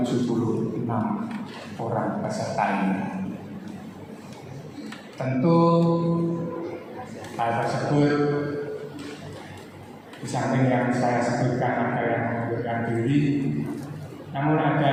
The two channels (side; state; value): both; identical; correlation 1.00